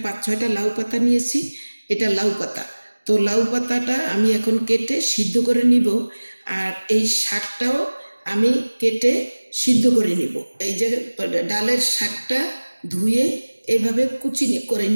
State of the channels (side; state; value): both; inverted; correlation -1.00